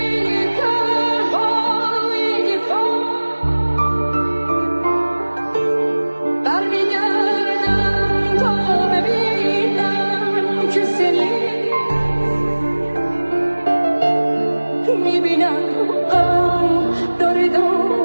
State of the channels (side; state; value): both; inverted; correlation -1.00